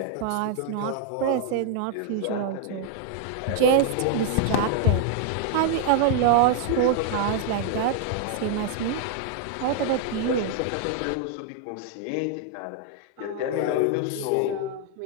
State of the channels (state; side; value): different; both; correlation 0.00